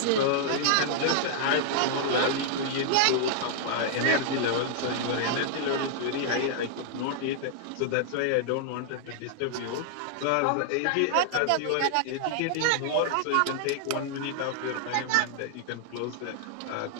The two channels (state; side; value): different; both; correlation -0.01